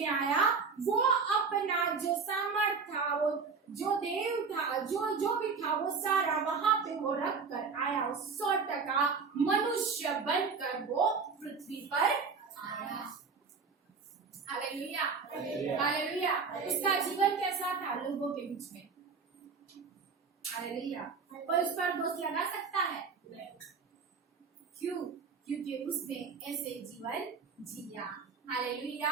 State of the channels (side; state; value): left; quieter; 5.2 dB